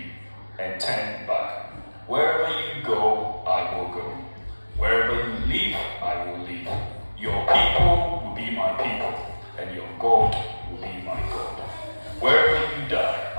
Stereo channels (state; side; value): inverted; both; correlation -1.00